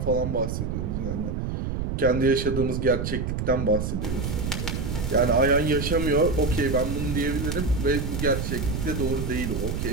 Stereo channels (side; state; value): right; noise; rumble, 2 dB below the sound